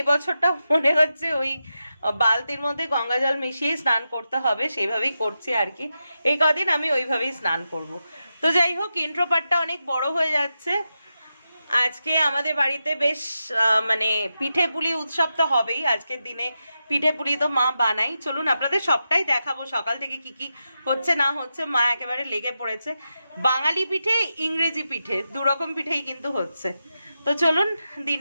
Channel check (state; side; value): inverted; both; correlation -0.89